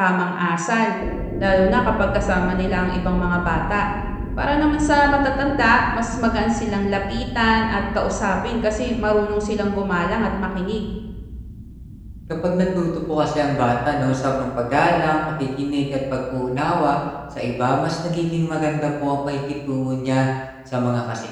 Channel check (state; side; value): identical; both; correlation 1.00